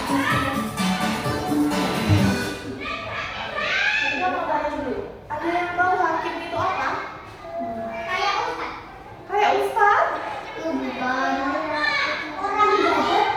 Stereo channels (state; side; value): identical; both; correlation 1.00